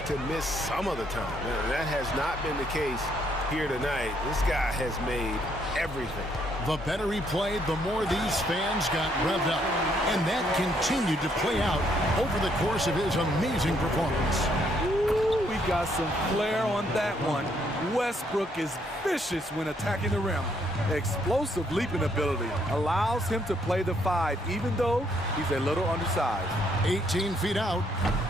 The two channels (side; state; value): both; normal; correlation 0.71